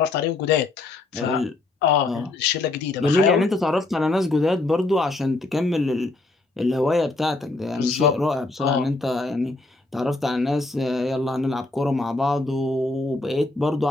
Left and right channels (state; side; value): quieter; right; 3.1 dB